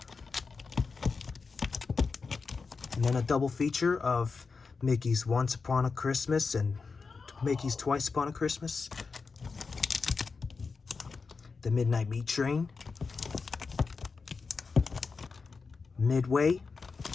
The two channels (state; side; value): quieter; right; 4.7 dB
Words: and then a double feature of Mickey's Once Upon a Christmas and Mickey's Twice Upon a Christmas, The Midnight Meat Train, Midway,